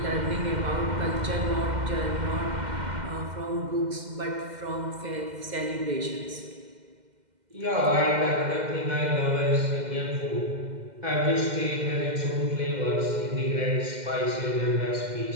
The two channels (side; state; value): left; late; 2.1 ms